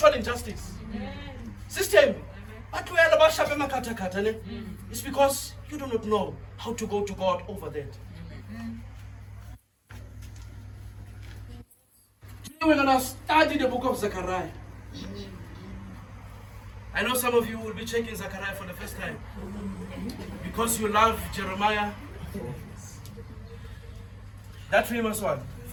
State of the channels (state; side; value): identical; both; correlation 1.00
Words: injustice. System. But it's because you do not know how to go to God over that. Today we're going to study the book of Zechariah. I know some of you will be checking Zechariah for the first time because you love Jeremiah, that famous one.